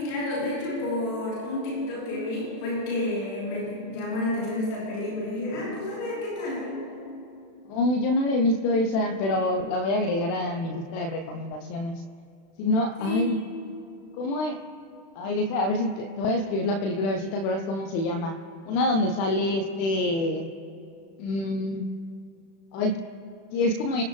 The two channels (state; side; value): late; right; 36 ms